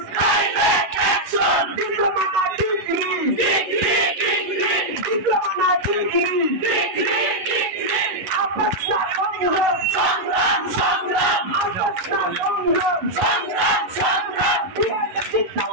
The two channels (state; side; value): late; left; 11 ms